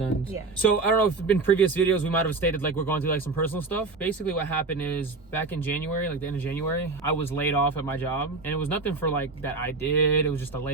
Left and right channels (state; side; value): quieter; left; 3.8 dB